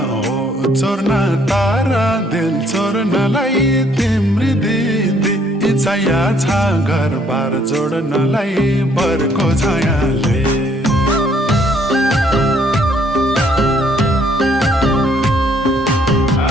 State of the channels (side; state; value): both; normal; correlation 0.65